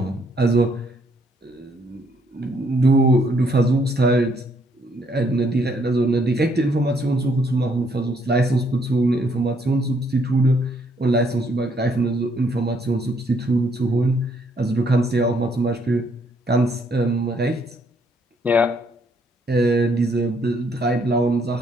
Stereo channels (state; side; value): normal; both; correlation 0.69